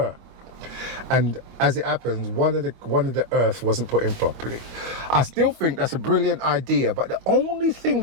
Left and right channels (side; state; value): left; late; 25 ms